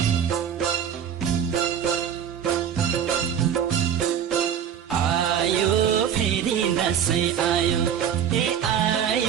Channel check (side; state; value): left; quieter; 8.7 dB